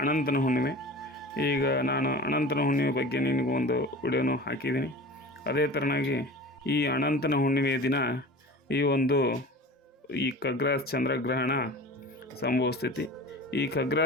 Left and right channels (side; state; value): both; normal; correlation 0.37